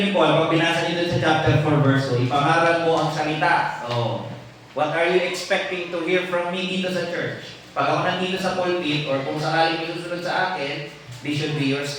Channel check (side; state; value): both; identical; correlation 1.00